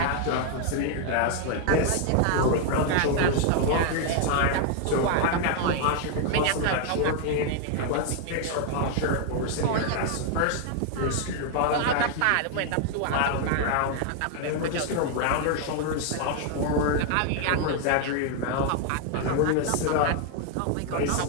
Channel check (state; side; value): different; both; correlation 0.00